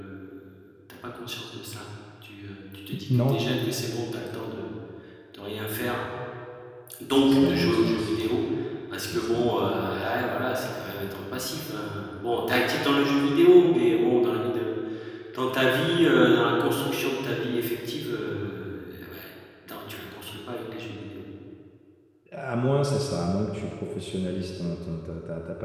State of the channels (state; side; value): identical; both; correlation 1.00